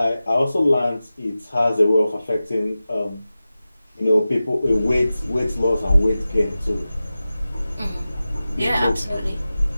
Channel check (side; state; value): both; inverted; correlation -0.95